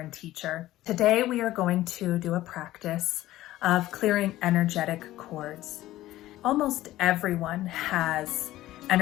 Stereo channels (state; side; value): quieter; right; 15.4 dB